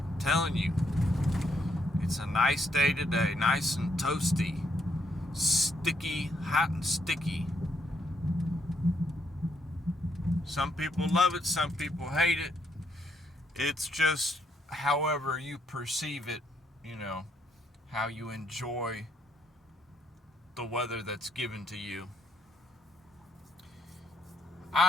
telling you, it's a nice day today, nice and toasty, sticky, hot and sticky. Some people love it, some people hate it. It's just however you perceive it, how you enjoy the weather that's given to you.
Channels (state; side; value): normal; both; correlation 0.74